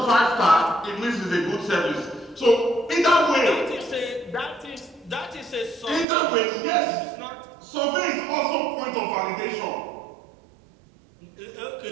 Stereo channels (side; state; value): left; drops out; at 6.1 s